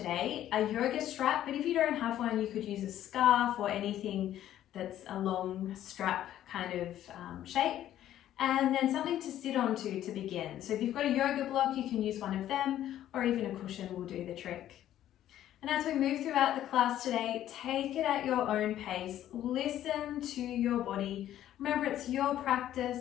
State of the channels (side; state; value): right; quieter; 12.1 dB